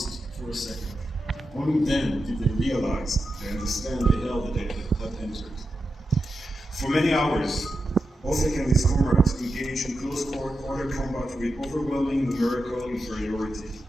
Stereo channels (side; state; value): both; normal; correlation 0.89